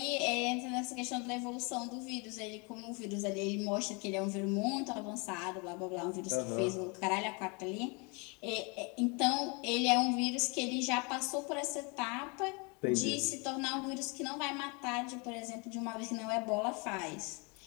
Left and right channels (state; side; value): quieter; right; 31.1 dB